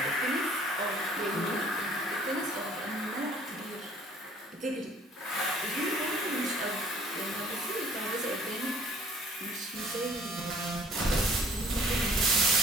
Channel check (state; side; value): normal; both; correlation 0.56